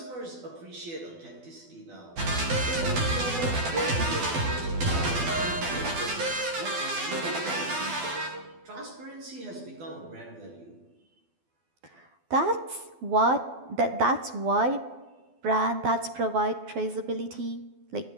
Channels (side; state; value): left; late; 12 ms